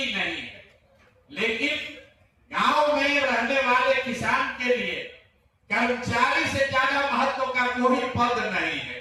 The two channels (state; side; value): identical; both; correlation 1.00